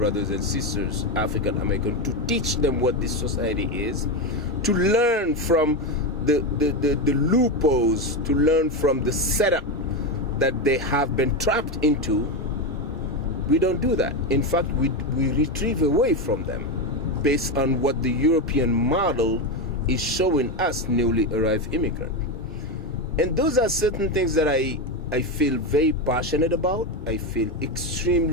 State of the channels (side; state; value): both; normal; correlation 0.12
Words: and sisters, African American, to teach them what this society is, to learn from the loopholes, to learn from the setup that they have been trapped into. We don't do that. In fact, we retrieve away from them based on what the European model is showing us newly arrived immigrant. And those are certain things that I feel very passionate about. I feel